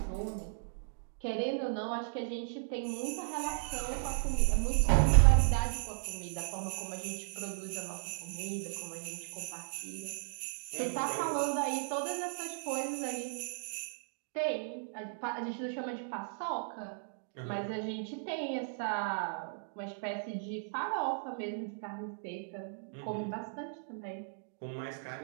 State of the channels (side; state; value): left; silent; digital silence